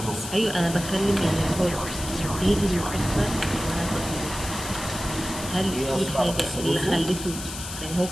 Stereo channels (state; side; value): noise; left; hiss, 9 dB below the sound